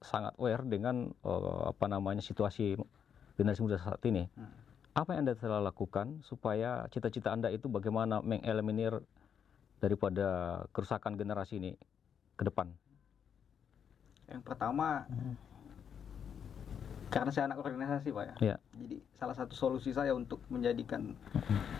sangat aware dengan situasi generasi muda saat ini. Apa yang Anda telah lakukan supaya cita-cita Anda itu bagaimana mengeliminir daripada kerusakan generasi ini ke depan? Yang pertama, karena saya anak organisasi Pak ya. Jadi salah satu solusi saya untuk menjadikan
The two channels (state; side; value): quieter; right; 7.8 dB